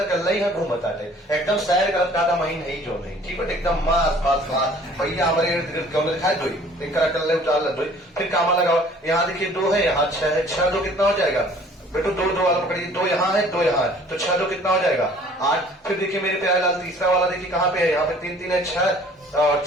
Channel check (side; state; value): both; normal; correlation 0.53